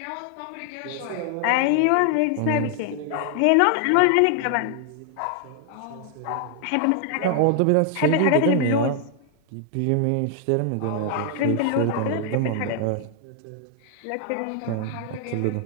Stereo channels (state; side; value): different; both; correlation 0.00